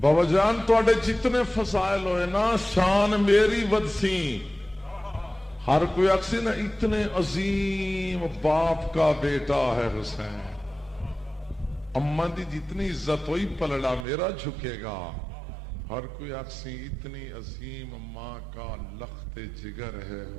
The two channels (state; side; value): drops out; left; at 14.1 s